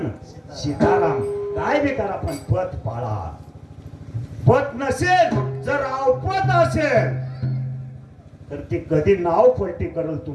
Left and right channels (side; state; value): both; identical; correlation 1.00